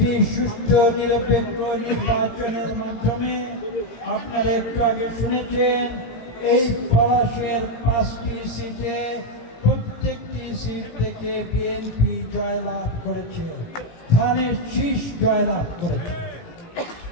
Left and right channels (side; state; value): right; late; 17 ms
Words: সুষ্ঠু নিরপেক্ষ নির্বাচনের মাধ্যমে আপনারা একটু আগে শুনেছেন এই পলাশের 5টি সিটে প্রত্যেকটি সিট থেকে বিএনপি জয়লাভ করেছে, ধানের শীষ জয়লাভ করেছে।